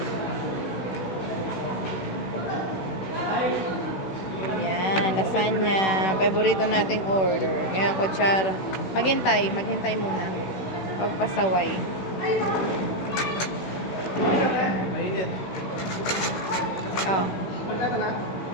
Yan, lasagna. Paborito nating order. Ngayon, kutsara. Maghintay muna. Huwag pasaway. Mainit. Oh.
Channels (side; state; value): right; late; 16 ms